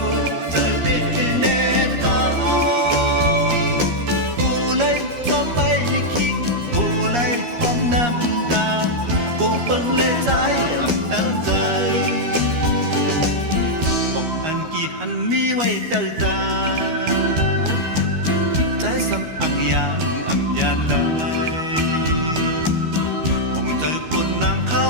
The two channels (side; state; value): left; late; 13 ms